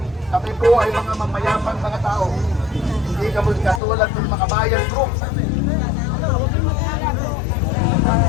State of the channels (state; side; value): drops out; right; at 3.8 s